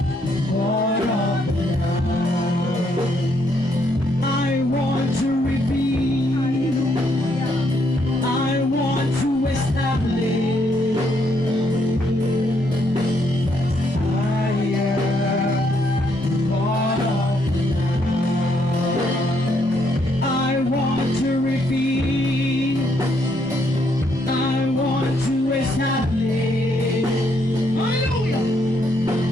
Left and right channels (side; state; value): both; normal; correlation 0.73